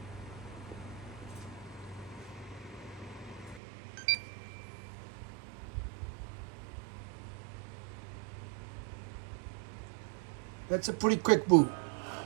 That's a pretty quick boot.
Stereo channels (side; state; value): left; drops out; at 3.6 s